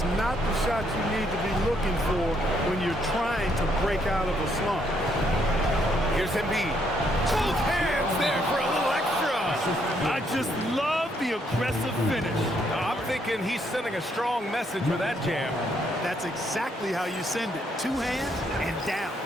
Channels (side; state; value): both; normal; correlation 0.72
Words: not the shot you need to be looking for when you're trying to break out of a slump. Here's Embiid. Both hands there for a little extra. I just love the aggressive finish. I'm thinking he's sending a strong message with that jam. That's exactly how you send it. Two hands and down.